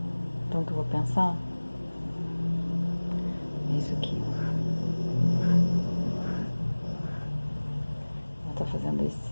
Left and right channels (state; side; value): inverted; both; correlation -1.00